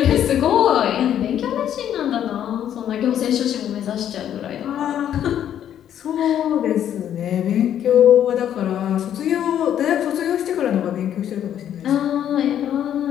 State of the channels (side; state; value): right; quieter; 10.2 dB